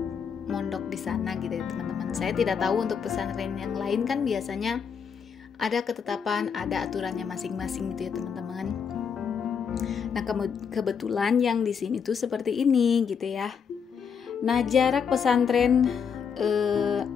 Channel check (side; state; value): right; quieter; 6.7 dB